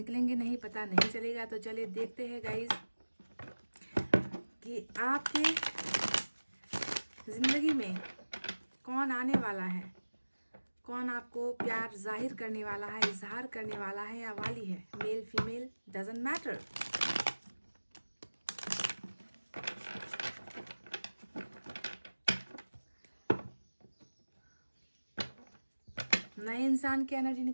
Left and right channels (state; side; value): inverted; both; correlation -1.00